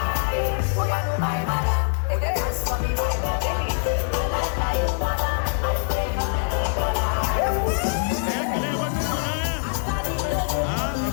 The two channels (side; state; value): right; silent; digital silence